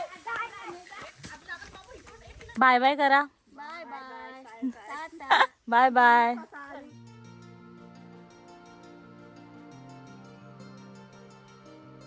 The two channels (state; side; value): identical; both; correlation 1.00